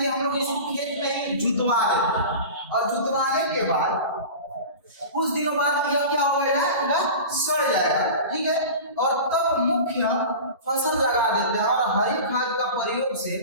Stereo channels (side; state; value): both; inverted; correlation -0.33